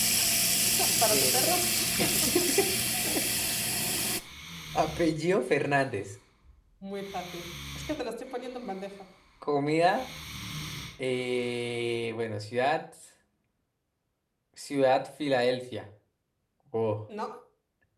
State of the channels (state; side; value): identical; both; correlation 1.00